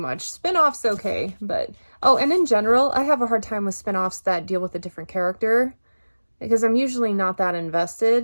Spin-offs okay, but oh, and in general, I have a hard time with spin-offs that deal with a different character because I'm usually not that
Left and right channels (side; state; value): both; inverted; correlation -1.00